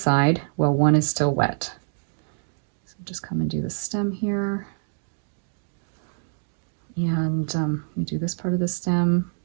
while one is still wet. So just come and do the stem here. And you do this part of the stem.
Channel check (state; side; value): silent; left; 61 dB below the other